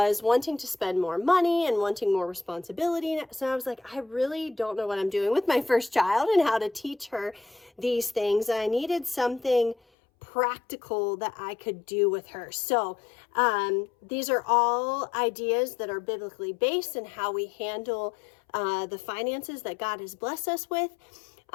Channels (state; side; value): drops out; right; at 9.8 s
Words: wanting to spend more money and wanting more responsibility. So I was like, I really don't know what I'm doing with my first child and how to teach her these things. I needed something practical that I could do with her. So these are all ideas that are biblically based and how we handle the finances that God has blessed us with.